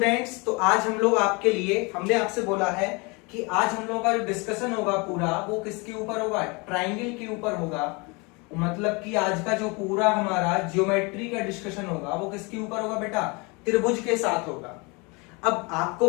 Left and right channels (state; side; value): quieter; right; 28.7 dB